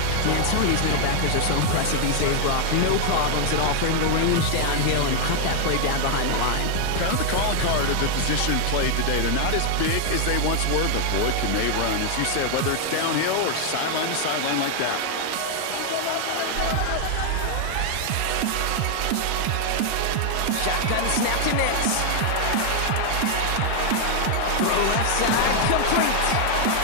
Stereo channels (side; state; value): both; different; correlation 0.00